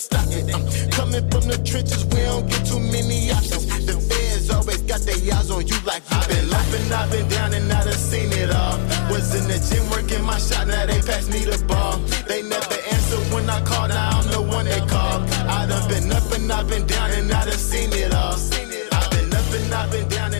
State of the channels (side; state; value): right; silent; digital silence